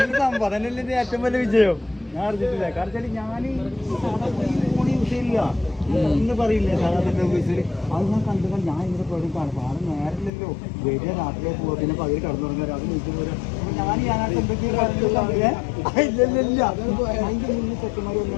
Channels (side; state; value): right; drops out; at 10.3 s